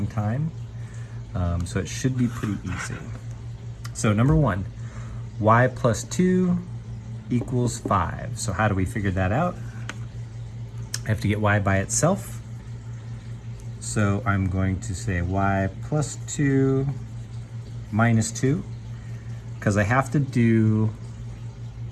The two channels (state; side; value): identical; both; correlation 1.00